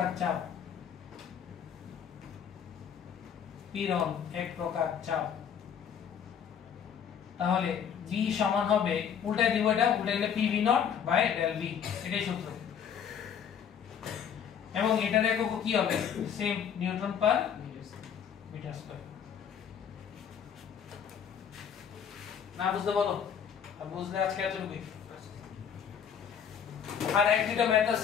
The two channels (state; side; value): quieter; right; 7.9 dB